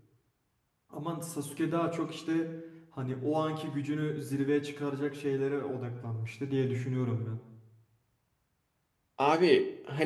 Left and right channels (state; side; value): identical; both; correlation 1.00